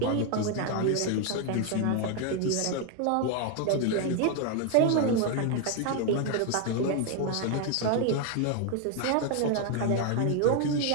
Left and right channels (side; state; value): both; different; correlation 0.01